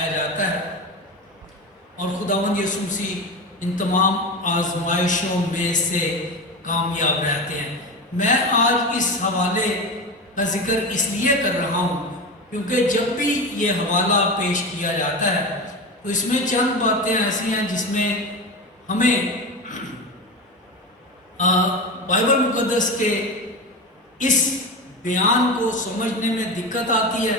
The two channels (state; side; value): normal; both; correlation 0.24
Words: جاتا ہے. اور خداوند یسوع مسیح ان تمام آزمائشوں میں سے کامیاب رہتے ہیں. میں آج اس حوالے کا ذکر اس لیے کر رہا ہوں کیونکہ جب بھی یہ حوالہ پیش کیا جاتا ہے تو اس میں چند باتیں ایسی ہیں جس میں ہمیں بائبل مقدس کے اس بیان کو سمجھنے میں دقت آتی ہے